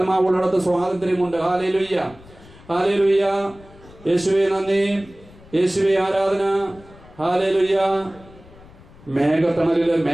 സ്വാതന്ത്ര്യമുണ്ട്. Hallelujah, hallelujah. യേശുവേ നന്ദി, യേശുവേ ആരാധന. ഹല്ലേലൂയ. മേഘത്തണലില്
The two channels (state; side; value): noise; left; rumble, 23 dB below the sound